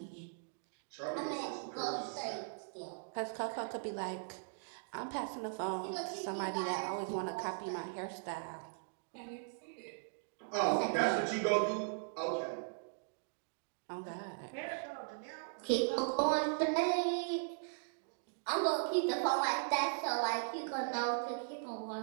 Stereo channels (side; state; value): left; silent; digital silence